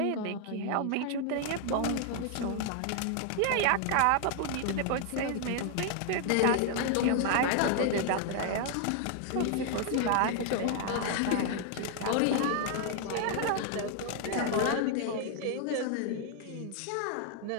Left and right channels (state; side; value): different; both; correlation 0.00